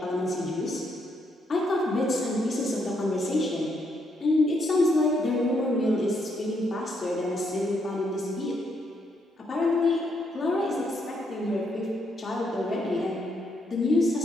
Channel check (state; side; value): normal; both; correlation 0.76